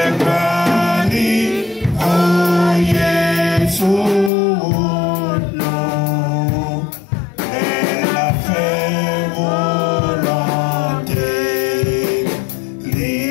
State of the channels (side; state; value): right; drops out; at 4.3 s